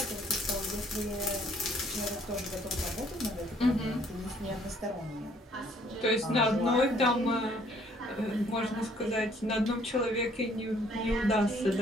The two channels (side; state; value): both; normal; correlation 0.62